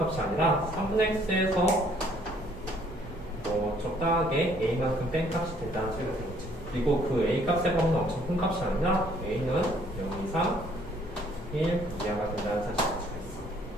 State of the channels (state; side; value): normal; both; correlation 0.62